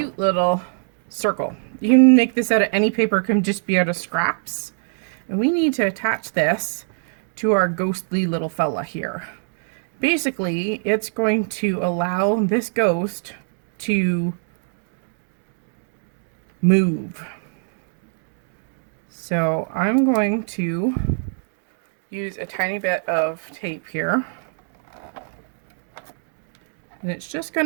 little circle. You can make this out of any paper, it can just be out of scraps. And we need to attach this to our ghostly little fella here. Basically, it's going to allow this ghost to move. So I'm going to use a tiny bit of tape here. And it's just going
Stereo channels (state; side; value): silent; left; digital silence